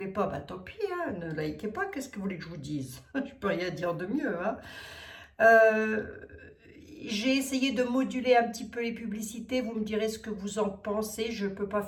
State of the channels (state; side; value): identical; both; correlation 1.00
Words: pas, bah tant pis, hein, ne likez pas. Qu'est-ce que vous voulez que je vous dise? Je peux rien dire de mieux, hein. J'ai essayé de moduler un petit peu les publicités. Vous me direz ce que vous en pensez. Je ne peux pas